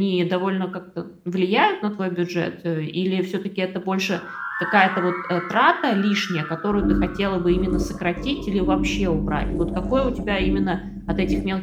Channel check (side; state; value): both; identical; correlation 1.00